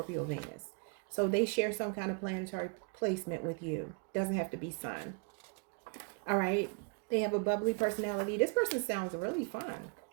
Venus. So they share some kind of planetary placement with you. Doesn't have to be sun. All right. They have a bubbly personality. This person sounds really fun.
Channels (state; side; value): quieter; left; 36.2 dB